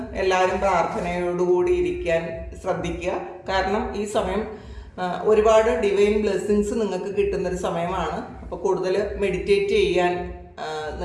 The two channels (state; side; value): identical; both; correlation 1.00